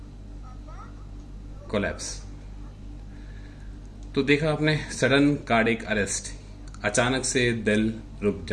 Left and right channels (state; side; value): identical; both; correlation 1.00